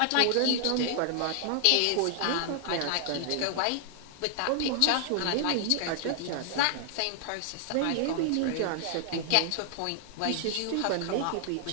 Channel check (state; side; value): different; both; correlation 0.00